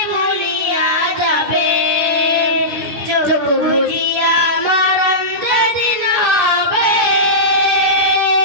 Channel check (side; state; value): left; late; 10 ms